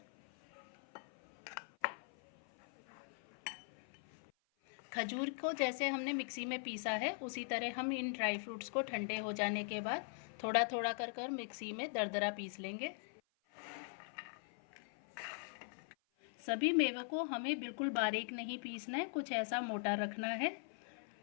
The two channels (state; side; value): silent; right; 50 dB below the other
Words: खजूर को जैसे हमने मिक्सी में पीसा है उसी तरह हम इन ड्राई फ्रूट्स को ठंडे हो जाने के बाद थोड़ा थोड़ा कर मिक्सी में दरदरा पीस लेंगे। सभी मेवों को हमें बिल्कुल बारीक नहीं पीसना है, कुछ ऐसा मोटा रखना है